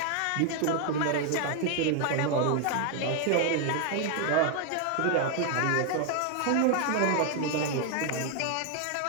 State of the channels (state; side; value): different; both; correlation 0.00